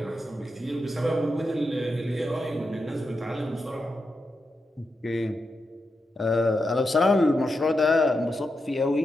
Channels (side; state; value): both; normal; correlation 0.87